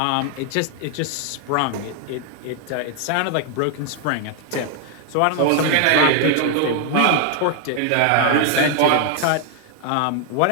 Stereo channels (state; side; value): different; both; correlation 0.00